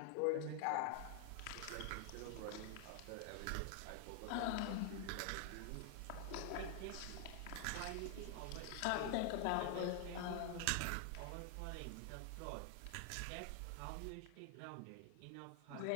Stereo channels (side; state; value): both; different; correlation 0.00